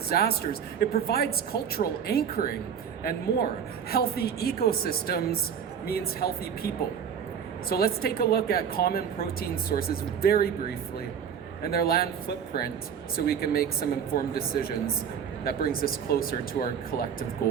It provides cultural anchoring and more. Healthy ecosystems means healthy people. So let's take a look at common protein sources very briefly and their land footprint so we can make some informed decisions that brings us closer to our collective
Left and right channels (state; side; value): quieter; left; 7.8 dB